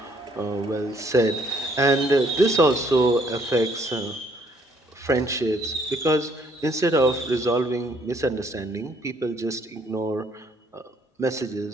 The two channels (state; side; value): normal; both; correlation 0.65